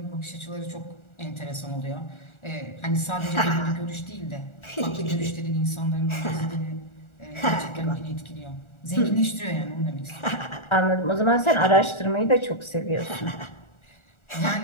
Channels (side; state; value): right; late; 1.4 ms